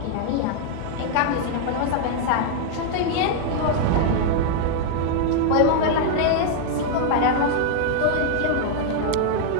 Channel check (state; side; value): different; both; correlation 0.00